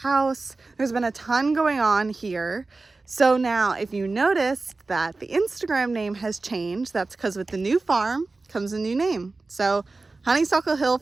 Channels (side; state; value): left; quieter; 3.6 dB